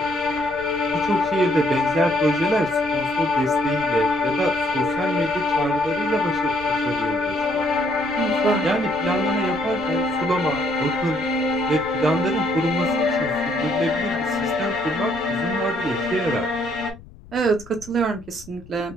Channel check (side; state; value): left; noise; rumble, 20 dB below the sound